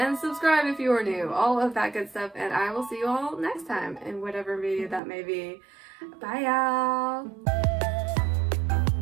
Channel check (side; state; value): left; drops out; at 5.0 s